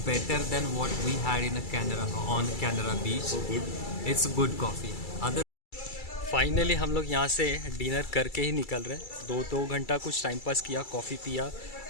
better than what we had in Canara beach. It's good coffee. Other finally हम लोग यहाँ से डिनर करके ही निकल रहे हैं। 2 घंटा कुछ टाइम पास किया, कॉफ़ी पिया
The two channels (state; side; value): late; right; 2.3 ms